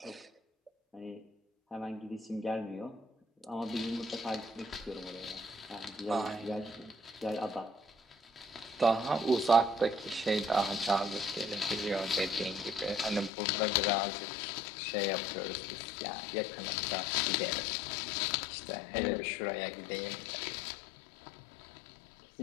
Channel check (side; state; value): right; drops out; at 13.3 s